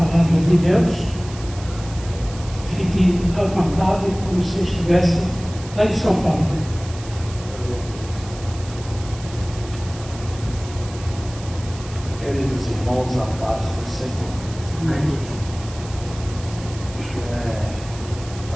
palavra de Deus. Fique à vontade, como se estivesse lá em São Paulo. Queridos irmãos, a paz do Senhor. Amém.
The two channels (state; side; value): noise; right; hiss, 17 dB below the sound